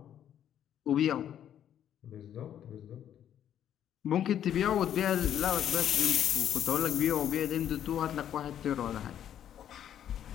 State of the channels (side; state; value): right; quieter; 10.2 dB